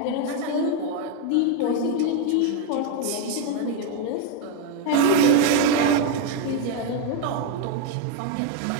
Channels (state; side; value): different; both; correlation 0.01